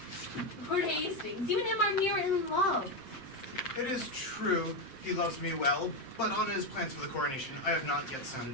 Lord Hastings, you and him are near in love. It is true he loves me well, but on his plans for the coronation, I have not yet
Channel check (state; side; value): late; right; 7.6 ms